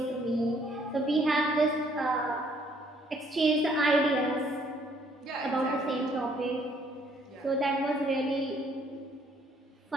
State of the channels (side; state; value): both; normal; correlation 0.64